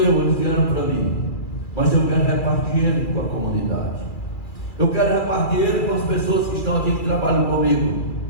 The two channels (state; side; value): late; right; 2.4 ms